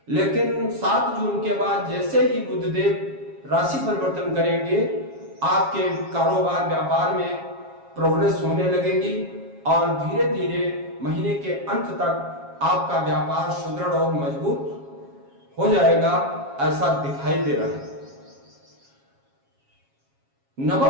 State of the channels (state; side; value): late; left; 7.3 ms